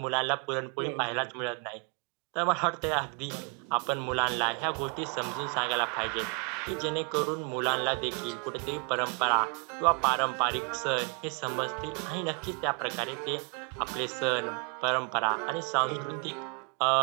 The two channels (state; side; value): quieter; left; 34.0 dB